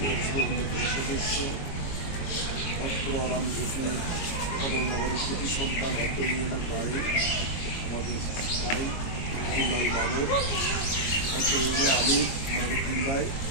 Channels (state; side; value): late; right; 22 ms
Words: পরিষদের অন্যতম সদস্য অত্র রামজ্যোতি কমলনগরের কৃতি সন্তান অত্র ইউনিয়নের বাড়ি আমাদের ভাই আব্দুল্লাল মামুন, অত্র ইউনিয়নের আমির মাইনুদ্দিন ভাই,